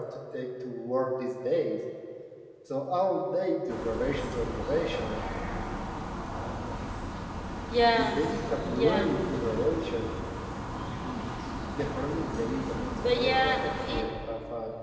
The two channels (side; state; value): both; identical; correlation 1.00